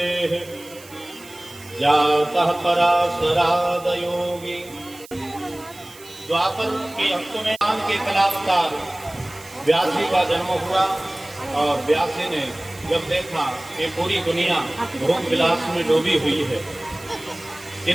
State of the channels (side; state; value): right; noise; hiss, 20 dB below the sound